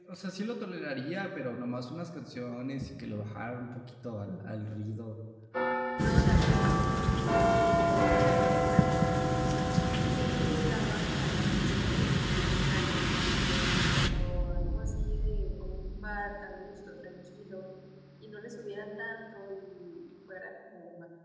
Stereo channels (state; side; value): identical; both; correlation 1.00